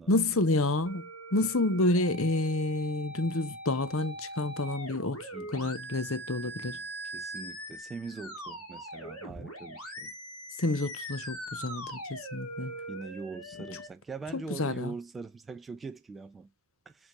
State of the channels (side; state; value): both; normal; correlation 0.31